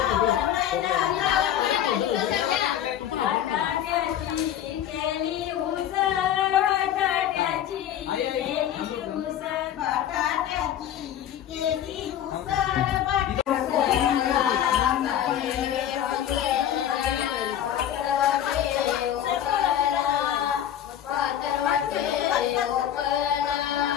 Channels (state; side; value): quieter; right; 10.7 dB